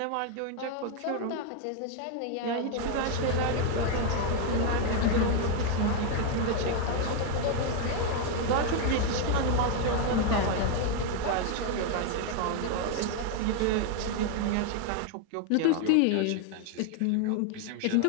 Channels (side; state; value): both; different; correlation 0.00